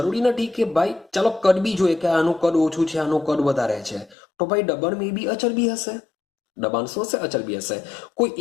નથી કે ભાઈ ચાલો કદ બી જોઈએ કે આનું કદ ઓછું છે, આનું કદ વધારે છે, તો ભાઈ દબાણ મે બી અચળ બી હશે. દબાણ શું હશે? અચળ બી હશે. કોઈ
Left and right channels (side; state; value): right; drops out; at 4.2 s